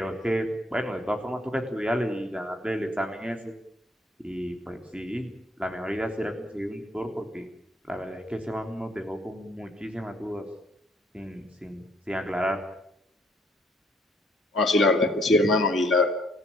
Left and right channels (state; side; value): normal; both; correlation 0.66